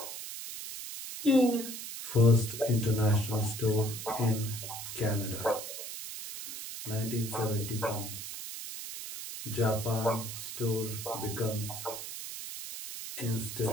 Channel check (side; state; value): right; noise; hiss, 8 dB below the sound